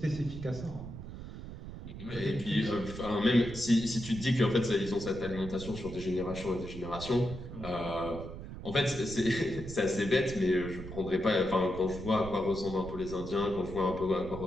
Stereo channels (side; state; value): right; noise; rumble, 10 dB below the sound